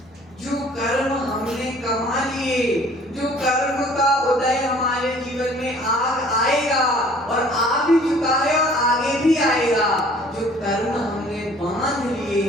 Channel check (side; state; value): both; normal; correlation 0.53